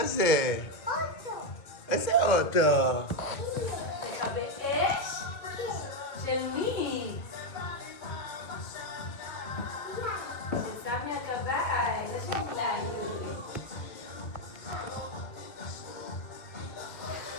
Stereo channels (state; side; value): late; right; 2.2 ms